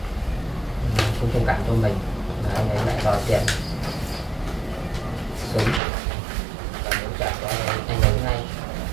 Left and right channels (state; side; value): drops out; left; at 5.8 s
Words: thông cảm cho mình, và anh ấy lại đòi tiền sớm và muốn trả cho anh ấy ngay.